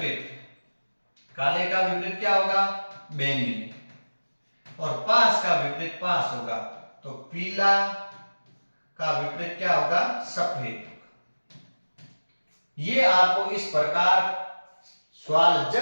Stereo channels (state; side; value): inverted; both; correlation -1.00